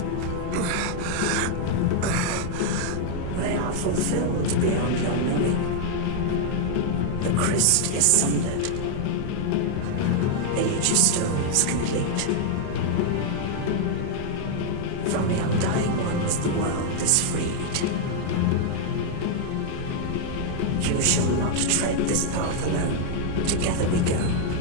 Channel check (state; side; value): different; both; correlation 0.00